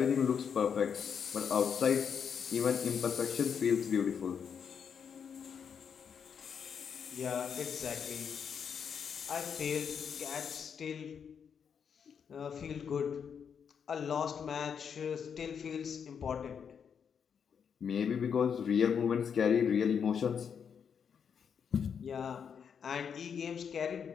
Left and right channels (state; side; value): quieter; right; 7.2 dB